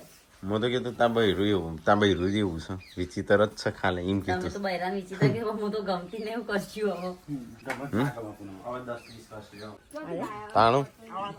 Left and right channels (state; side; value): identical; both; correlation 1.00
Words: મેં તો કીધું ત્યાં બૈરું એવું ત્યાં બૈરું જેવું છે વિચિત્ર જ છે ખાલે એમ તમે કીધું તો બૈરાન વિચિત્ર કે હું તો ગમતી ને એવું કરશું તાણું